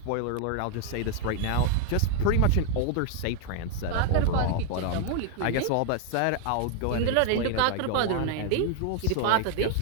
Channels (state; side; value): different; both; correlation 0.00